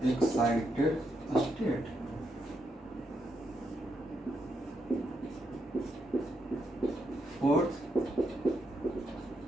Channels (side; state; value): both; normal; correlation 0.80